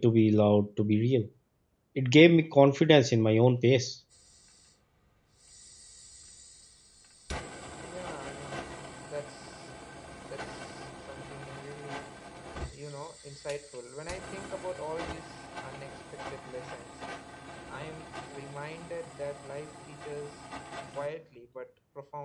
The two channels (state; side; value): identical; both; correlation 1.00